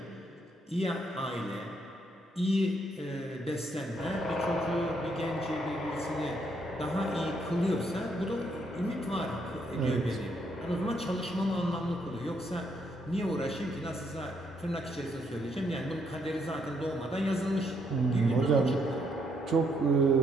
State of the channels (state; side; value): normal; both; correlation 0.73